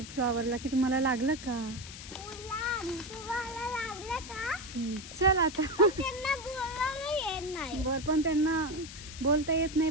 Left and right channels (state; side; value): noise; left; hiss, 13 dB below the sound